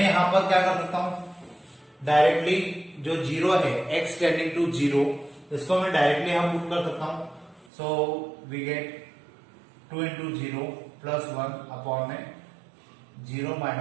यहाँ पर क्या कर सकता हूं, डायरेक्टली जो 0 है, x टेंडिंग टू 0, इसको मैं डायरेक्टली यहाँ पुट कर सकता हूं। So we get 2 into 0 plus 1 upon में 0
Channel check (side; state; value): left; drops out; at 7.7 s